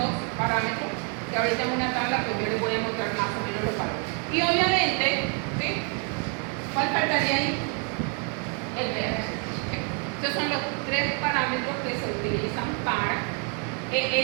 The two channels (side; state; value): left; quieter; 39.0 dB